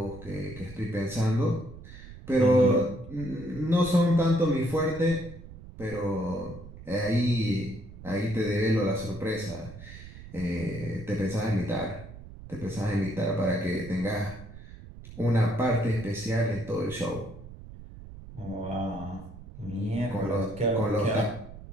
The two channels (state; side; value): noise; right; rumble, 15 dB below the sound